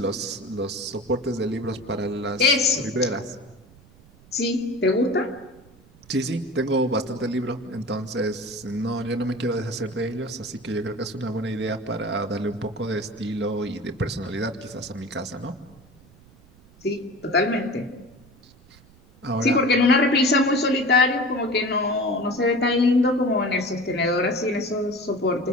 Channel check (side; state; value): right; noise; rumble, 26 dB below the sound